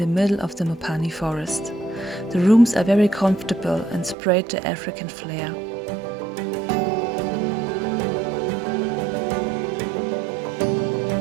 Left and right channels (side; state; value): left; drops out; at 4.2 s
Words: middle of the Mopani forest. The rooms are very comfortable and spread the African flair.